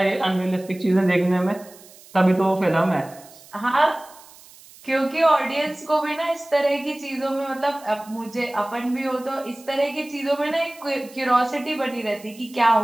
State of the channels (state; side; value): noise; right; hiss, 22 dB below the sound